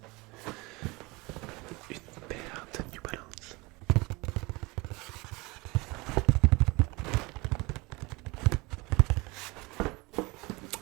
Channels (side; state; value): left; quieter; 24.4 dB